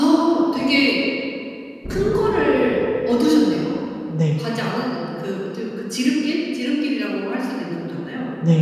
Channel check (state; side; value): identical; both; correlation 1.00